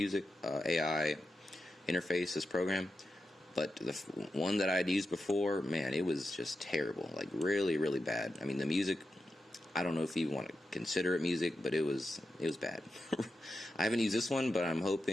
AI interface, this program, but the one that I'd used before, man, it was just terrible, like really, really bad. I mean, the music, I don't know if you want to consider it music, but it was bad. I haven't used this one, but I'm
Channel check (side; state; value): both; normal; correlation 0.89